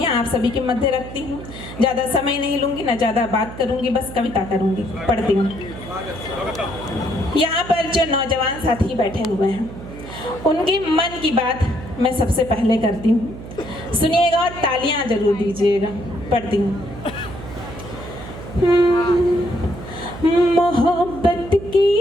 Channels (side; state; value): right; noise; hum, 13 dB below the sound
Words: आप सभी के मध्य रखती हूँ। ज़्यादा समय नहीं लूँगी, ना ज़्यादा बात करूँगी, बस कविता करूँगी। पढ़ती हूँ। यहाँ पर जो नौजवान साथी बैठे हुए हैं, उनके मन की बात मैं सबसे पहले करती हूँ। सुनिएगा और तालियां जरूर दीजिएगा। पढ़ती हूँ। मोहब्बत की